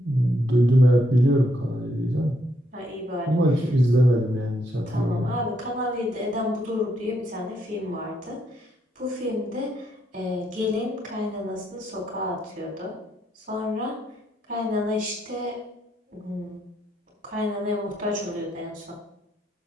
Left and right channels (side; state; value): both; normal; correlation 0.75